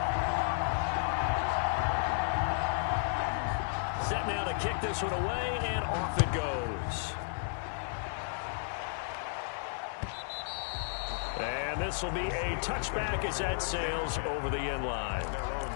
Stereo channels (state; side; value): silent; right; 56 dB below the other